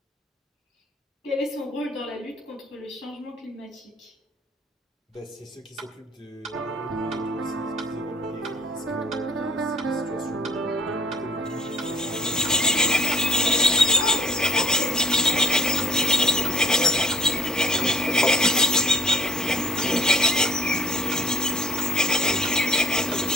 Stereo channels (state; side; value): normal; both; correlation 0.56